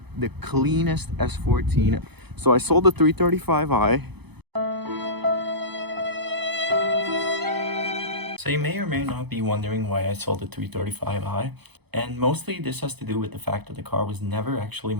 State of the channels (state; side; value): late; left; 0.98 ms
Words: the cleanest S14. So I sold the 335i. So you may or may not be wondering why I sold the 335i, and mostly this has to do with the fact that the car was never actually